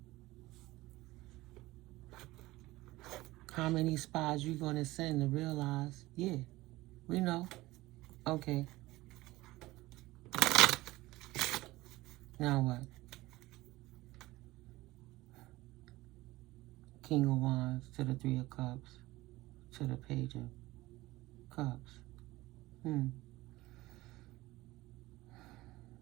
how many spies you gonna send to realize, yeah, we know, okay. Now what? King of Wands to the Three of Cups to the Page of Cups.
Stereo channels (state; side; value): quieter; left; 18.9 dB